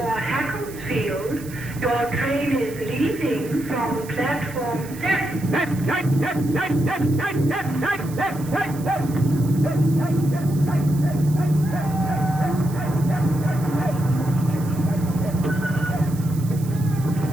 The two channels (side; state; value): right; noise; hiss, 18 dB below the sound